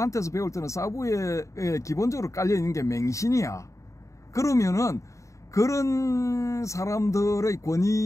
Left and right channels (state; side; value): late; right; 0.15 ms